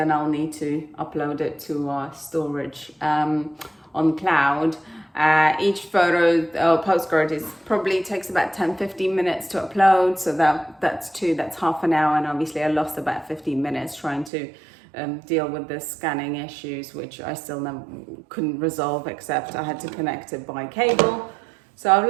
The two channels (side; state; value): left; drops out; at 14.3 s